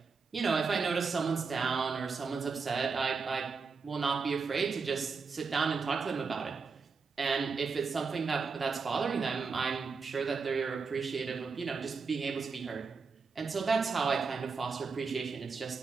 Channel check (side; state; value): left; quieter; 4.9 dB